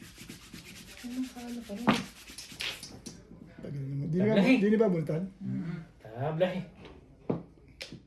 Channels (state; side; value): identical; both; correlation 1.00